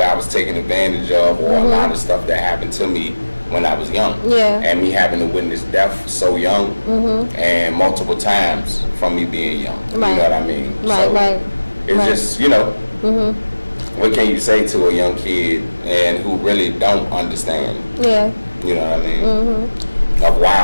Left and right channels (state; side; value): inverted; both; correlation -1.00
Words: I was taken advantage of, or a lot of stuff that happened to me when I was young. Yeah. And me having to witness death so young, and multiple times from me being young. You know what I mean? Right. It's just, what can you say to a young kid and who really don't understand? Yeah. You know what I mean? Of